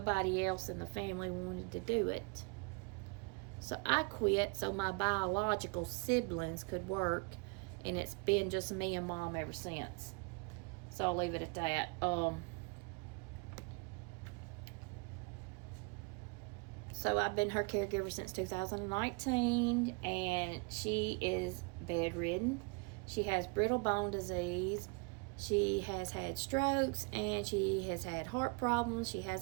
else in the family wanted to do it. So I quit so my biological siblings could work, and it's been just me and Mom ever since. So I'll leave it at that. So I've been her caregiver since 2019, and she is bedridden. She has brittle bone disease. She has had strokes, and she has had heart problems. She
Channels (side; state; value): left; quieter; 31.0 dB